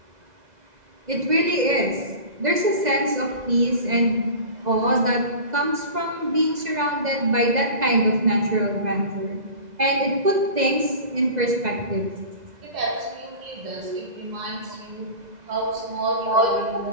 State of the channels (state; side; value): late; left; 2.0 ms